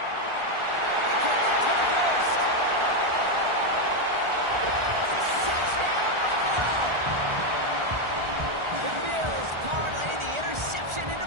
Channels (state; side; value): late; left; 1.4 ms